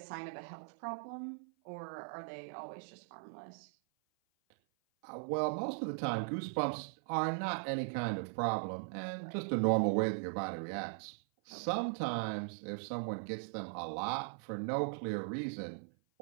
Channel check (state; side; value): silent; left; 52 dB below the other